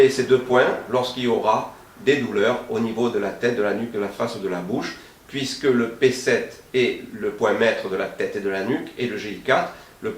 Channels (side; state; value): both; identical; correlation 1.00